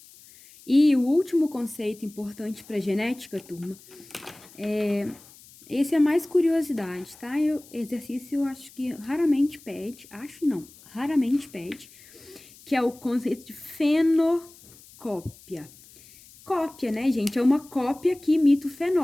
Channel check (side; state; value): left; noise; hiss, 23 dB below the sound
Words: E o último conceito importante para genética, turma, esse é mais curiosidade, tá? Exercício eu acho que raramente pede, raramente pede, que é o conceito de fenocópia. Cópia, né, gente? É uma cópia que imita o